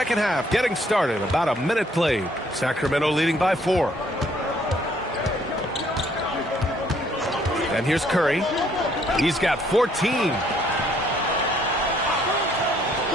half getting started. About a minute played. Sacramento leading by 4. And here's Curry. He's got 14.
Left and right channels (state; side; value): normal; both; correlation 0.65